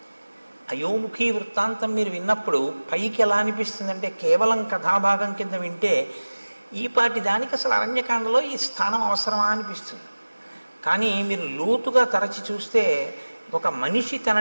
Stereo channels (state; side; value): inverted; both; correlation -1.00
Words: అయోముఖి వృత్తాంతం మీరు విన్నప్పుడు పైకి ఎలా అనిపిస్తుందంటే కేవలం కథాభాగం కింద వింటే ఈ పాటి దానికి అసలు అరణ్యకాండలో ఈ స్థానం అవసరమా అనిపిస్తుంది. కానీ మీరు లోతుగా తరచి చూస్తే ఒక మనిషి